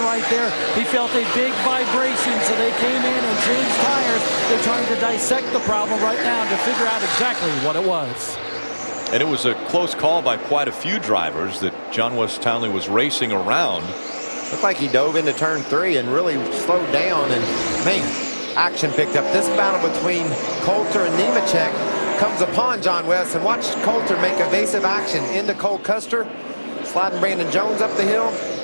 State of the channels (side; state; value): both; inverted; correlation -1.00